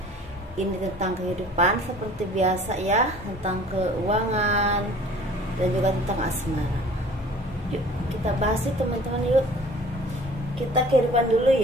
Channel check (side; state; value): both; normal; correlation 0.49